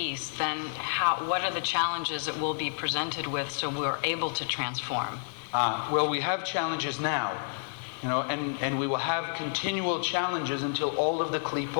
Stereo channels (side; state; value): right; silent; digital silence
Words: then what are the challenges that we'll be presented with so we're able to transform? Well, we have challenges now, and we will have continual challenges until all of the